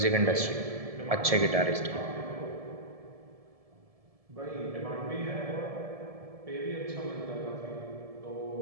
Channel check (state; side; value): late; left; 1.7 ms